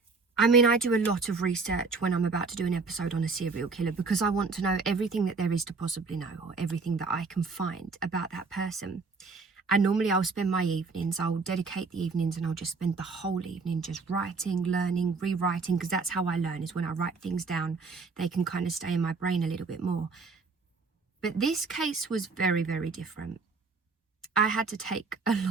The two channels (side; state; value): left; quieter; 4.4 dB